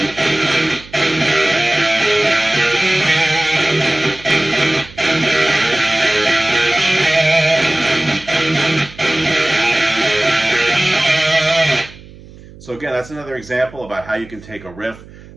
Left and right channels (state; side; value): noise; right; hum, 20 dB below the sound